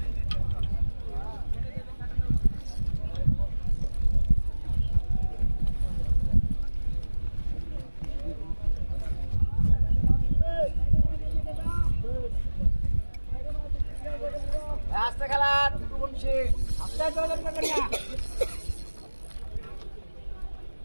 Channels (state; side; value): inverted; both; correlation -1.00